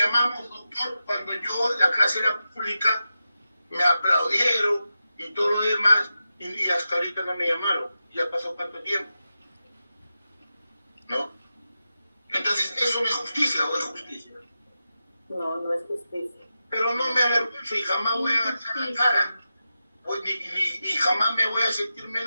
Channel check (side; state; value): both; inverted; correlation -0.90